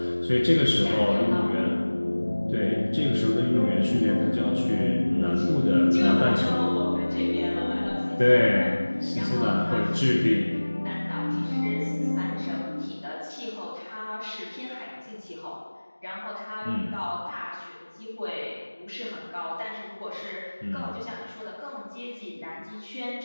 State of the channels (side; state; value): both; inverted; correlation -1.00